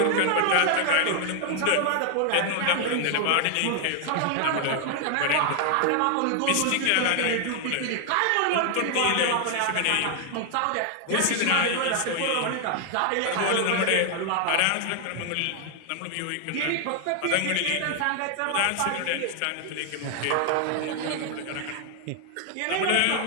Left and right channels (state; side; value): different; both; correlation 0.00